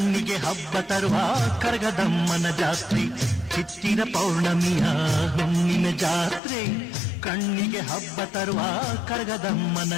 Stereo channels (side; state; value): right; drops out; at 6.4 s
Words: ಹಬ್ಬ ತರುವ ಕರಗದಮ್ಮನ ಜಾತ್ರೆ. ಚಿತ್ತಿರ ಪೌರ್ಣಮಿಯ ಹುಣ್ಣಿಮೆ ಜಾತ್ರೆ, ಕಣ್ಣಿಗೆ ಹಬ್ಬ ತರುವ ಕರಗದಮ್ಮನ